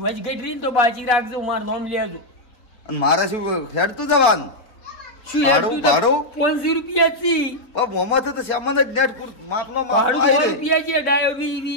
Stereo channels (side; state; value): right; late; 3.9 ms